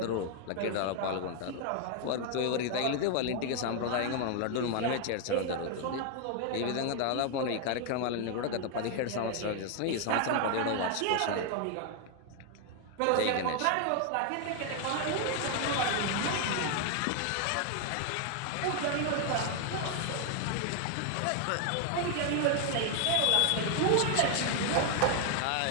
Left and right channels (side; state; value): both; different; correlation 0.00